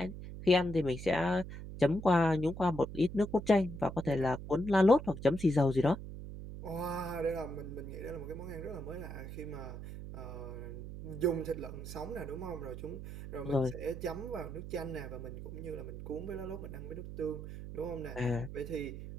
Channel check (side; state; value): right; noise; hum, 9 dB below the sound